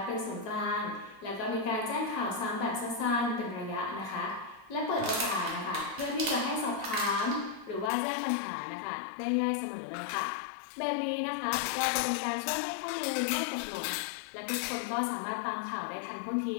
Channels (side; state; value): right; drops out; at 7.9 s